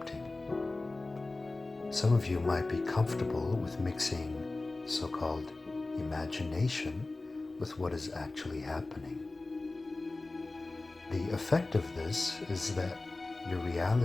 Some of you might be comfortable with mixing so-called imagination with what is actually happening. The effect of this is that your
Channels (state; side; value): quieter; right; 3.2 dB